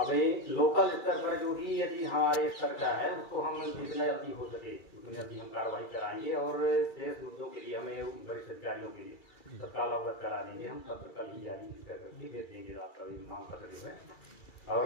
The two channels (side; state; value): right; late; 2.3 ms